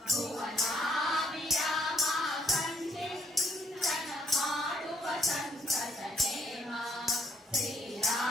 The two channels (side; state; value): both; normal; correlation 0.69